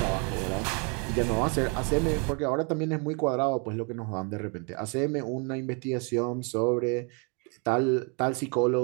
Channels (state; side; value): quieter; left; 35.6 dB